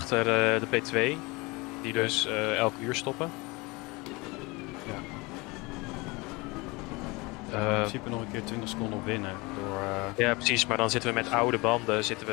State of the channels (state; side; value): quieter; right; 24.8 dB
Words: de P2. Die dus elk uur stoppen. Ja. In principe nog een keer 20 seconden op winnen. Door, Ja, precies. Maar dan zitten we met oude banden zitten